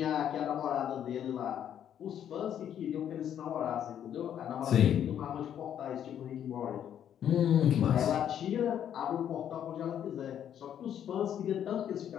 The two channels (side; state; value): right; quieter; 9.7 dB